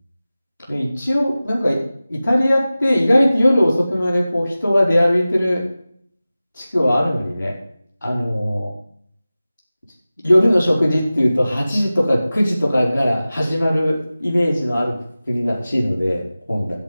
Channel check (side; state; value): both; inverted; correlation -0.96